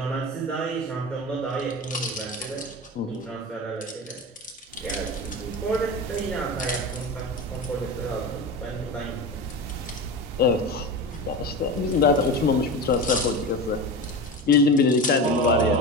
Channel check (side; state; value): both; normal; correlation 0.26